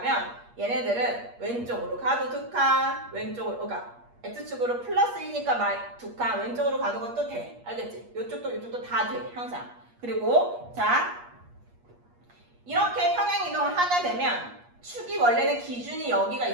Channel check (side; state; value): left; late; 8.4 ms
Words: 얘네들은 왼쪽으로 가도 두 칸, 왼쪽으로, 그러니까 x축으로 플러스 2니까 두 칸, 왼쪽으로 가는 것도 돼. 알겠지? 이쪽도 다 돼. 항상. 그리고 자, 이렇게 평행 이동을 하게 되면 축이 원래는 기준이 여기가